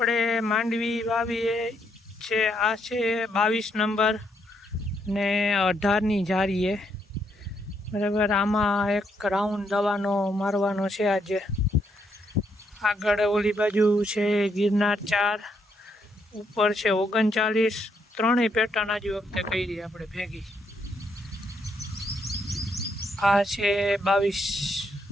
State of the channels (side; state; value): both; normal; correlation 0.75